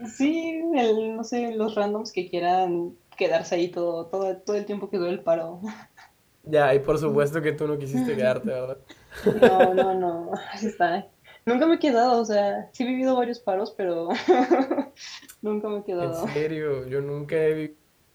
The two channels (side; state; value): both; identical; correlation 1.00